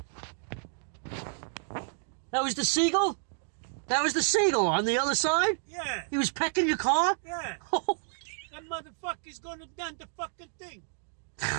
That was the seagull? That was the seagull on the other side? Yeah. He was pecking your car? Yeah. Holy, That motherfucker's gonna done the fucking thing.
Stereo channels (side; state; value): left; silent; digital silence